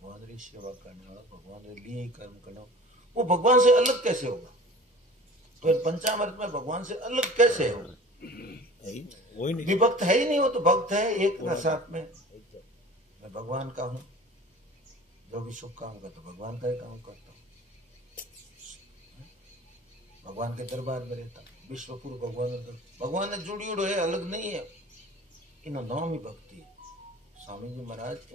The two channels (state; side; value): normal; both; correlation 0.42